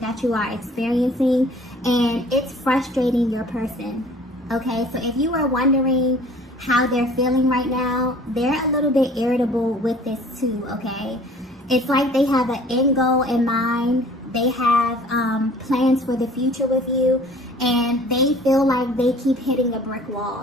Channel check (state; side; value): normal; both; correlation 0.50